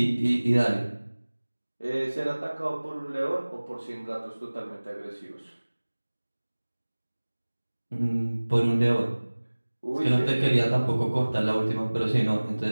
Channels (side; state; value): both; inverted; correlation -1.00